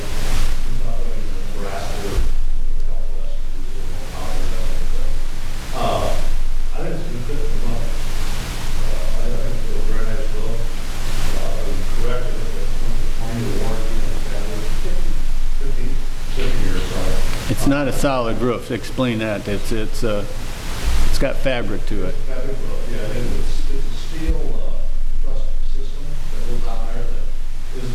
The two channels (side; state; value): both; identical; correlation 1.00